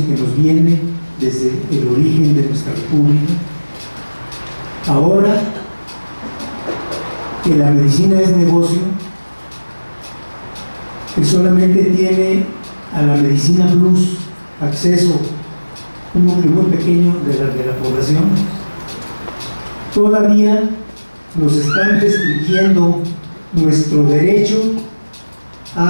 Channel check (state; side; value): inverted; both; correlation -1.00